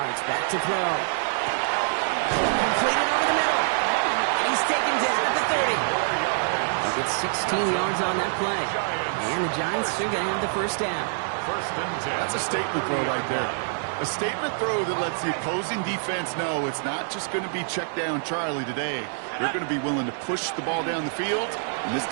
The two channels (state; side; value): silent; left; 61 dB below the other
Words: back to throw. Completed over the middle. He's taken down at the 30. He gets 16 yards on that play. And the Giants are going to have the first down. First and 10. That's a statement throw right there. A statement throw that lets the opposing defense know it's not just going to be check down Charlie today. They're going to be willing to push the ball down the field, and this